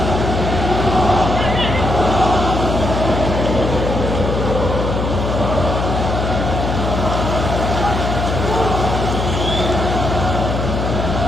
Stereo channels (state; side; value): noise; left; hum, 2 dB below the sound